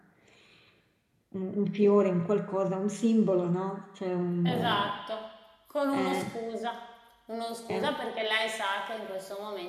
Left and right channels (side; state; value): both; identical; correlation 1.00